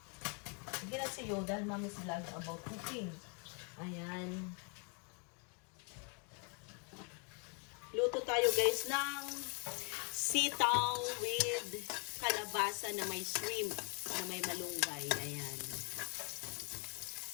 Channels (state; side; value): quieter; right; 36.7 dB